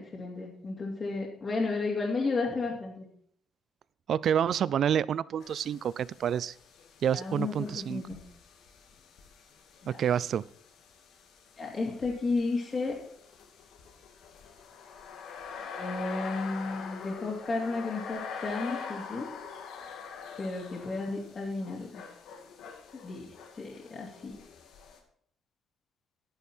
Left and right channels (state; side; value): normal; both; correlation 0.74